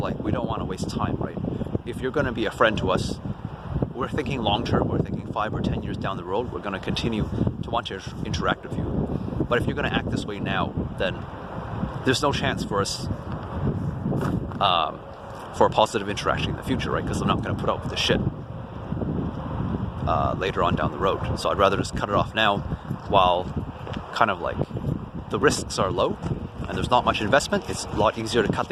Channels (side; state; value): both; identical; correlation 1.00